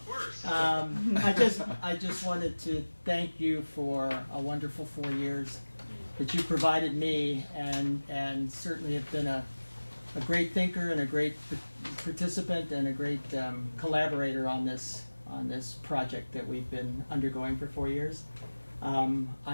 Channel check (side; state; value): both; inverted; correlation -1.00